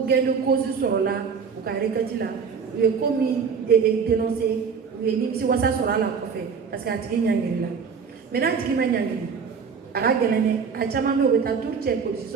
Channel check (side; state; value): left; quieter; 6.0 dB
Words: gendo cause sur là o ka rekati là ou est commis et dénoncé ou est ni si wasa sur là ko fait parce que atiki nyangiri là maintenant atiki ma nyangiri aga gelene a chama me o ta tout check ko si